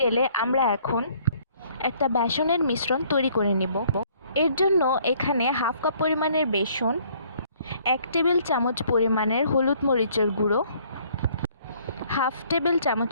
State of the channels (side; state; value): both; inverted; correlation -0.61